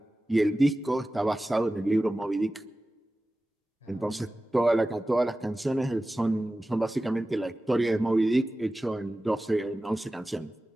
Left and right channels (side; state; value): both; normal; correlation 0.95